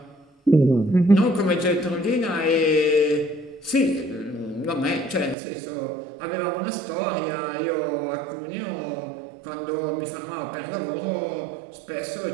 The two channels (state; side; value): drops out; left; at 5.4 s